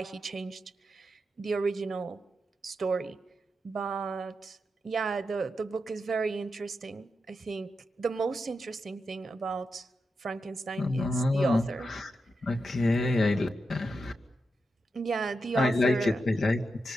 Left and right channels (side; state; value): both; normal; correlation 0.87